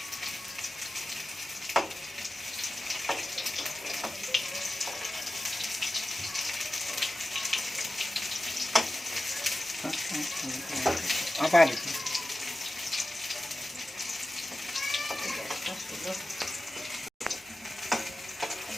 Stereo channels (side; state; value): both; normal; correlation 0.94